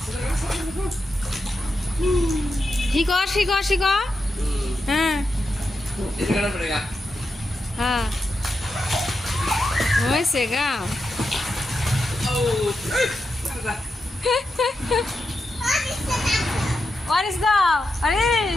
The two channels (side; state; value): both; normal; correlation 0.87